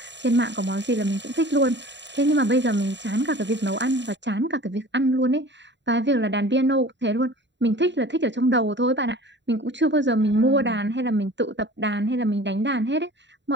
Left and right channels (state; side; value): late; left; 0.52 ms